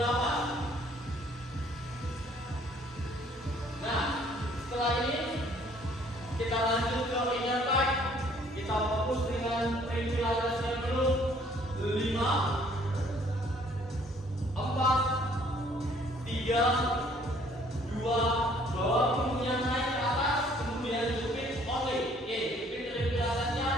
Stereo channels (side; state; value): both; normal; correlation 0.60